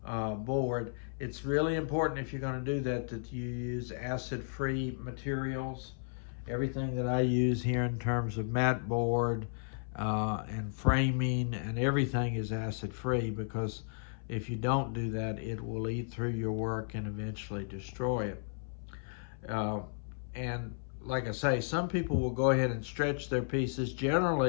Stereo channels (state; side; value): silent; right; 55 dB below the other